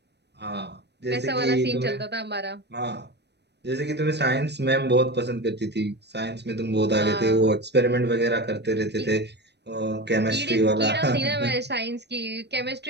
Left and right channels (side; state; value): left; late; 0.49 ms